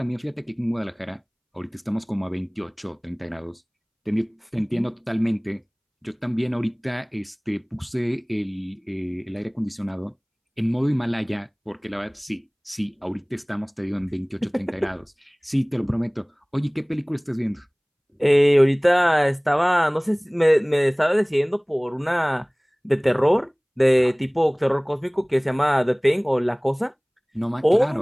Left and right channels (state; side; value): identical; both; correlation 1.00